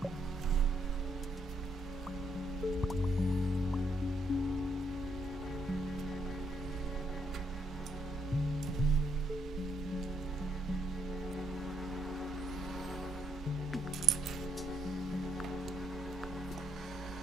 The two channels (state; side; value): normal; both; correlation 0.75